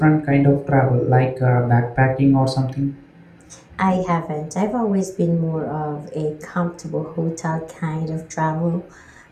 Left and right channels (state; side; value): identical; both; correlation 1.00